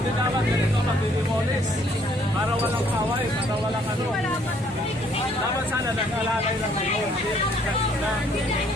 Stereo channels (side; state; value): both; normal; correlation 0.64